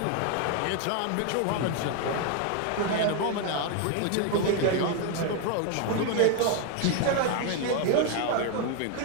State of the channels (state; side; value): different; both; correlation 0.01